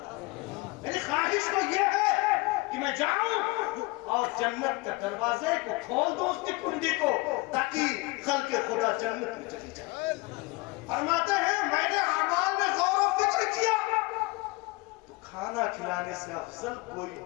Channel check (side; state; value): right; quieter; 24.7 dB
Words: میری خواہش تو یہ ہے کہ میں جاؤں اور جنت کے دروازے کو کھول دوں اس کی کنڈی کو تاکہ خلق خدا جنت میں چلی جائے۔ فرماتے ہیں میں نے اعمال میں غور و فکر کیا تو کھانا کھلانے سے افضل کوئی